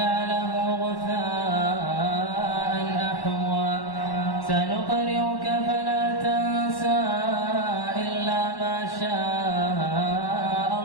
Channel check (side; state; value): right; late; 1.1 ms